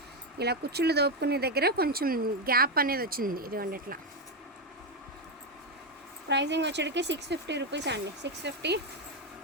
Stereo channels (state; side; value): normal; both; correlation 0.07